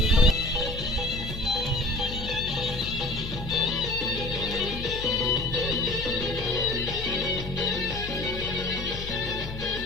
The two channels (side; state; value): left; noise; hum, 9 dB below the sound